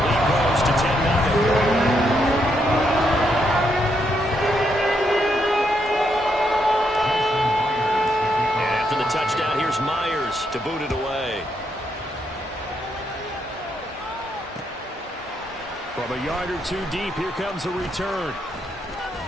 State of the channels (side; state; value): both; normal; correlation 0.78